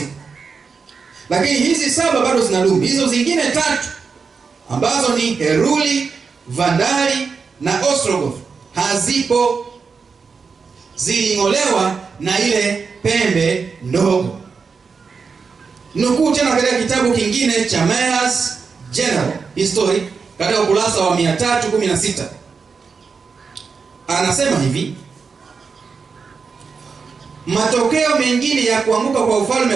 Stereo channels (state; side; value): quieter; left; 5.2 dB